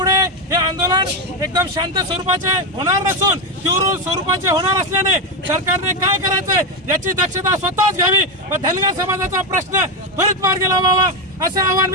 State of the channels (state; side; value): normal; both; correlation 0.09